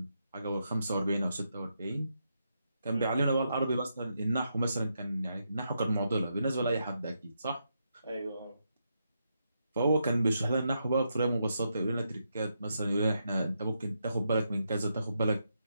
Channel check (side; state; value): both; inverted; correlation -0.82